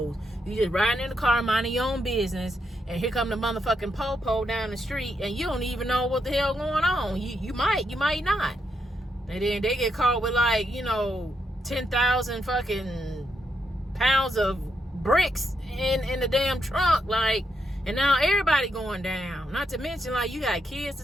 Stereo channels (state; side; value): normal; both; correlation 0.81